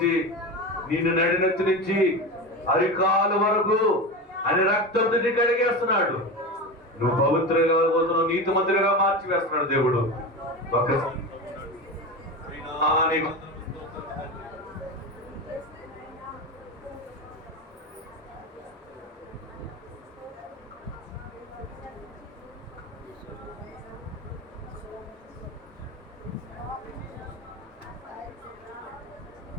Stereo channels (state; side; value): normal; both; correlation 0.24